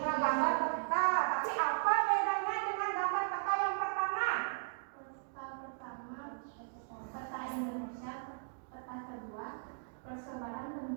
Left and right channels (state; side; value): silent; left; digital silence